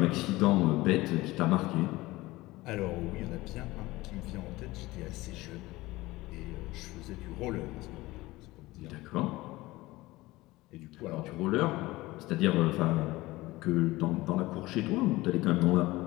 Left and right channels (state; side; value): quieter; right; 19.4 dB